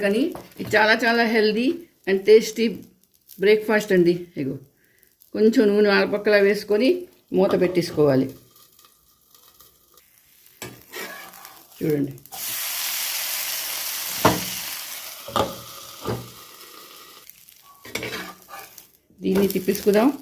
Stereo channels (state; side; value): identical; both; correlation 1.00